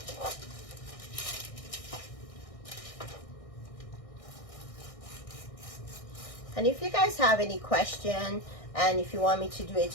And if you guys have any question, and if you want me to do a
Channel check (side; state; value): right; late; 1.6 ms